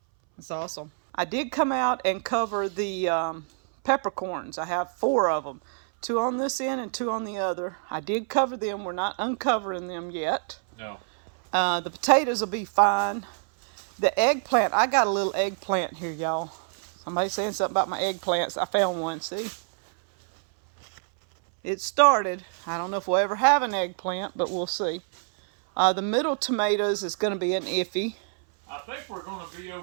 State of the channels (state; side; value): silent; left; 61 dB below the other